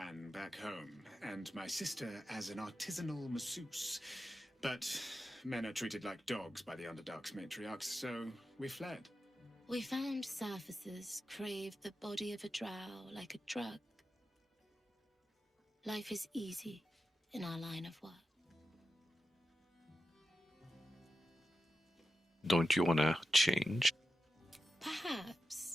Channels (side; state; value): both; normal; correlation 0.90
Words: back home, and my sister as an artisanal masseuse. But men are treated like dogs by the Underdark's matriarchs, so we fled. We found surfacers crave the body of a drow like a drug. Life is easy in our line of work. Don't you want to change?